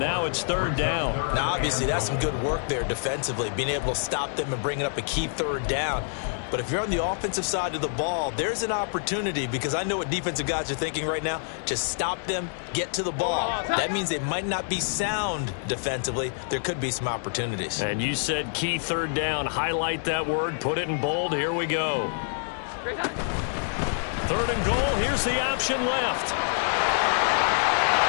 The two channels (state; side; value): silent; right; digital silence